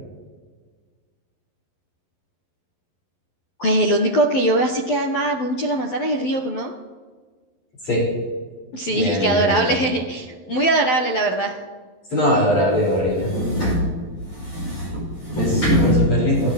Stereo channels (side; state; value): right; late; 11 ms